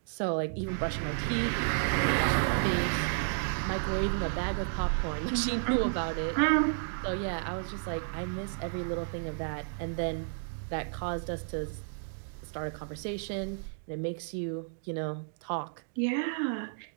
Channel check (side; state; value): left; silent; digital silence